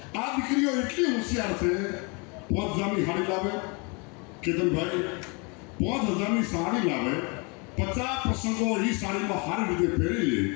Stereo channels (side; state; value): right; quieter; 31.4 dB